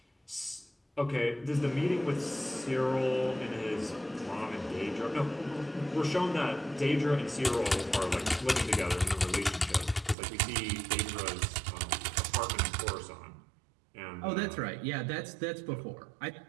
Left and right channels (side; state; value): left; drops out; at 10.2 s